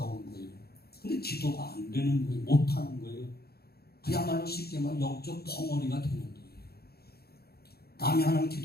거예요. 근데 기도가 안 되는 거예요. 못하는 거예요. 그야말로 쉽게 말하면 영적 벙어리가 되는 거예요. 남이 하는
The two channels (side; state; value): right; late; 0.46 ms